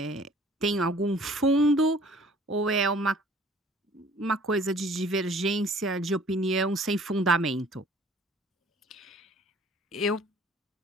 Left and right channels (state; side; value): normal; both; correlation 0.53